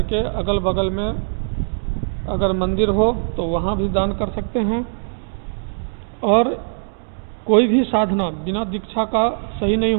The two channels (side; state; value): left; silent; digital silence